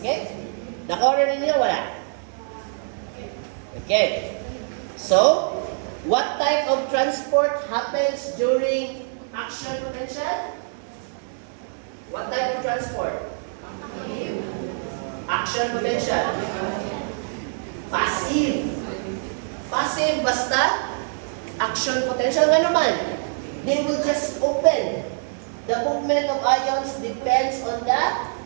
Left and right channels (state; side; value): silent; left; 62 dB below the other